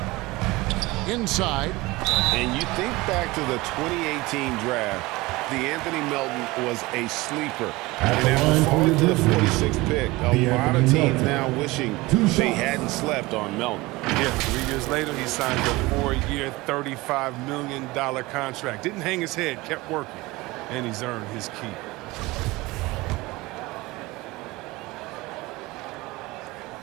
Inside. And you think back to the 2018 draft, Anthony Melton was a sleeper. And after falling to the 46th pick, a lot of teams now wishing they hadn't slept on Melton. Yeah, 3 years later, he signed a 4-year, $35 million contract. Didn't hang his head, kept working, and he's earned his keep.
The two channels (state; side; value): quieter; left; 21.3 dB